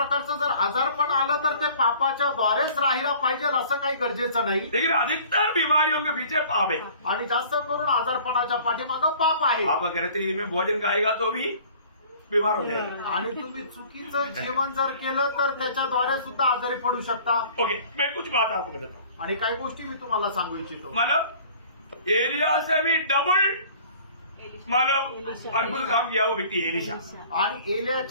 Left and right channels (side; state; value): both; inverted; correlation -0.50